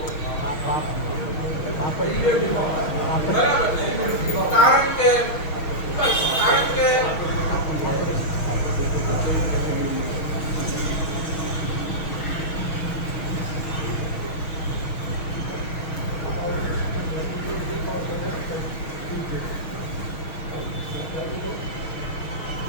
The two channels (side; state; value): right; late; 6.3 ms